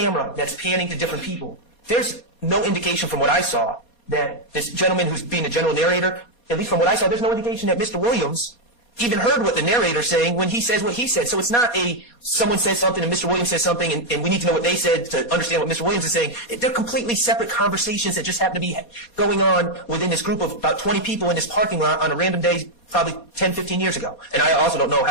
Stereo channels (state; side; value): late; right; 4.2 ms